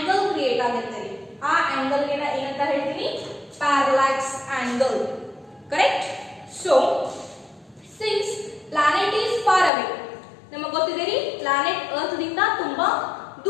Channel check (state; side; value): drops out; right; at 9.7 s